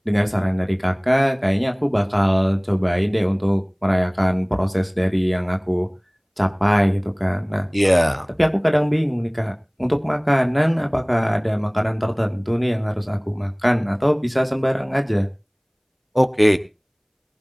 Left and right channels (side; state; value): both; identical; correlation 1.00